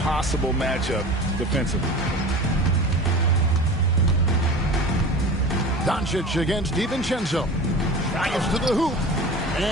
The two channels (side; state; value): both; normal; correlation 0.35